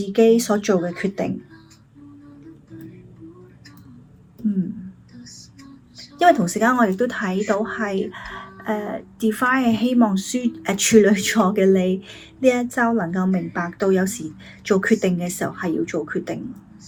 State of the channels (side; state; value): both; identical; correlation 1.00